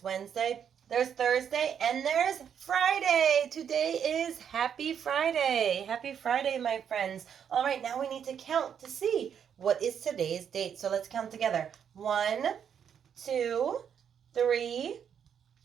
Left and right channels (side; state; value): left; quieter; 8.1 dB